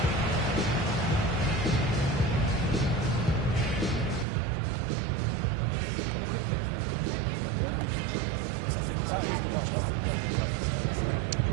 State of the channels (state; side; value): drops out; left; at 4.2 s